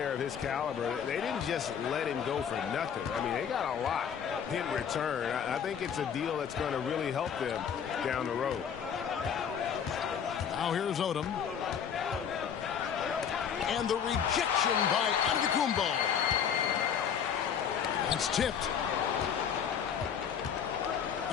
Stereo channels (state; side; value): quieter; right; 7.8 dB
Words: of his caliber, they didn't just let him go for nothing. I mean, they got a lot in return. I think it's a deal that's going to really help them down the road. Now here's Odom. And the rejection by Antetokounmpo. That's tipped.